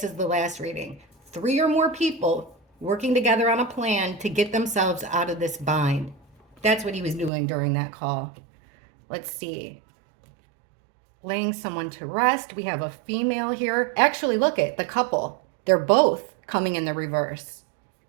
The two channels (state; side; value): drops out; left; at 7.3 s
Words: as the last reading. 3 or more people working together on a plan to get themselves out of this bind. That's what he was doing during that call. Let's see. Laying someone to rest. We have a female here. Actually, look at the couple. They're both coming in the reverse.